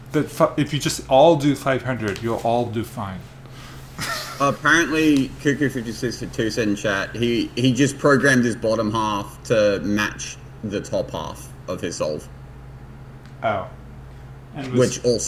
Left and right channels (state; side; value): identical; both; correlation 1.00